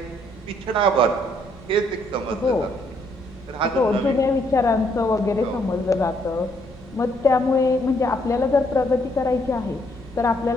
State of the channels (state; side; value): normal; both; correlation 0.70